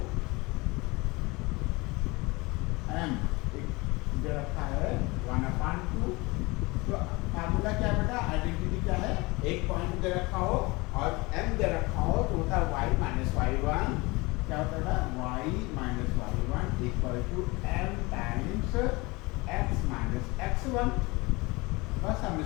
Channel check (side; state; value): right; quieter; 24.1 dB